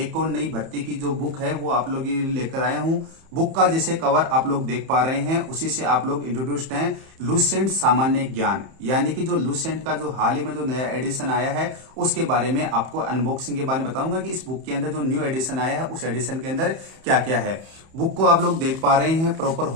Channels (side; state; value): left; late; 31 ms